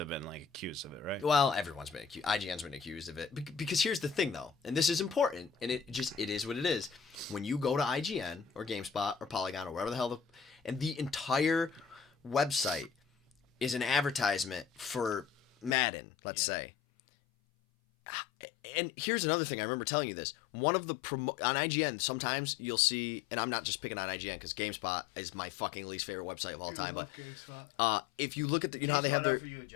have been like accused of it, right? Well, everyone's been accused. IGN's been accused of it because here's the thing though, and this is important, and it is what it is. When you go to IGN or GameSpot or Polygon or wherever the hell and the entire website is an advertisement for Madden, let's say. And here's another thing. I remember telling you this. One of the on IGN, sometimes you'll see, and I'm not just picking on IGN because GameSpot is my fucking least favorite website of all time. I love GameSpot. If you look at the, GameSpot, how they have offer you a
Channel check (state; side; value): drops out; right; at 15.8 s